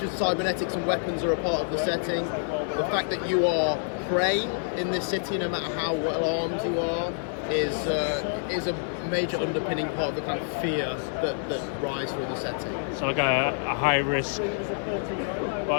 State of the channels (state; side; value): silent; right; 60 dB below the other